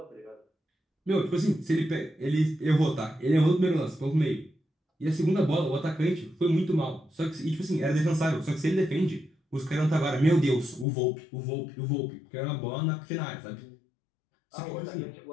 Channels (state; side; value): drops out; right; at 10.9 s